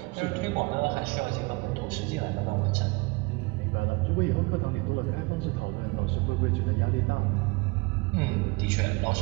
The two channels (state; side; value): quieter; left; 26.1 dB